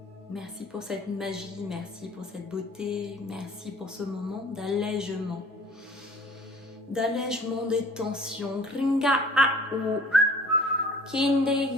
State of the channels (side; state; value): both; normal; correlation 0.49